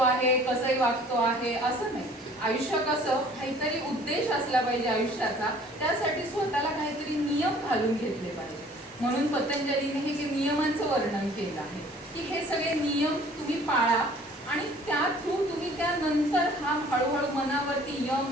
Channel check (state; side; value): normal; both; correlation 0.53